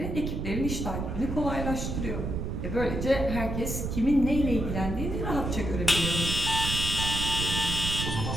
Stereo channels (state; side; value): noise; right; rumble, 3 dB below the sound